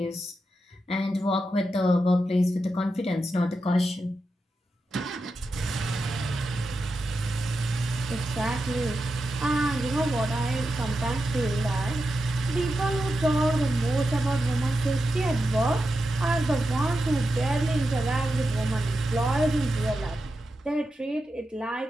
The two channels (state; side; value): normal; both; correlation 0.88